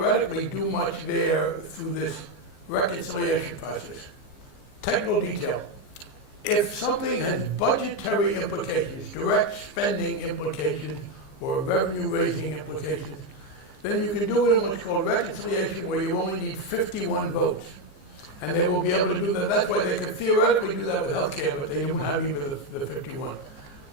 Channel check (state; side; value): late; right; 15 ms